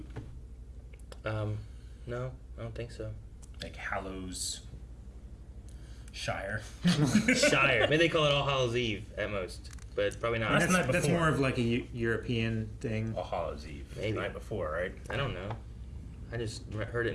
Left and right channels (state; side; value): identical; both; correlation 1.00